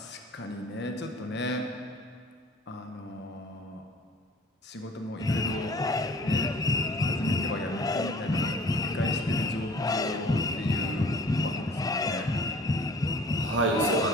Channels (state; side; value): normal; both; correlation 0.49